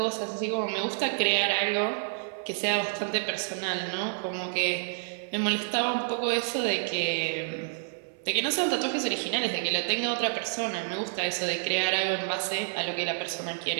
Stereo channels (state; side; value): silent; left; 58 dB below the other